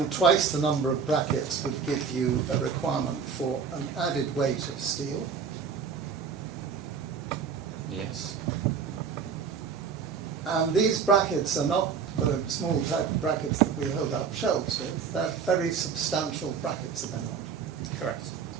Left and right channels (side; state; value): left; quieter; 6.2 dB